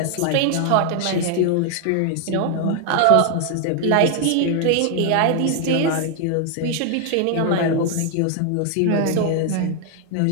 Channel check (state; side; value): different; both; correlation 0.00